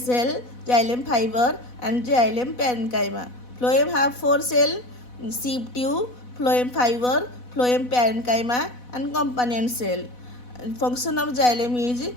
xylem fiber, and xylem parenchyma. Phloem have four cell: sieve tube, phloem fiber, phloem parenchyma, and companion cell. Function of xylem is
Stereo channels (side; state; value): right; late; 4.1 ms